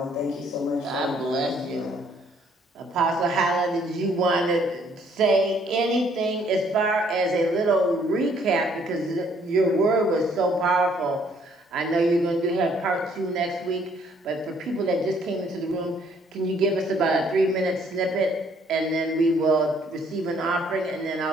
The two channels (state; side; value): normal; both; correlation 0.64